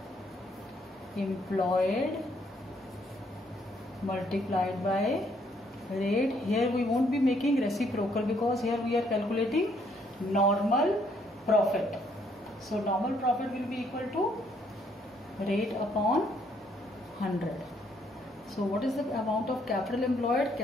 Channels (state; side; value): normal; both; correlation 0.69